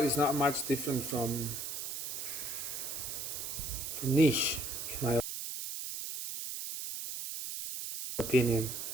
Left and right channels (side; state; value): right; noise; hiss, 5 dB below the sound